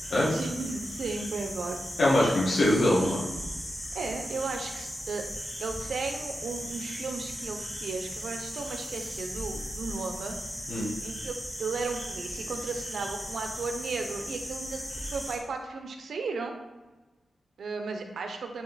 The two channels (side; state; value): both; normal; correlation 0.88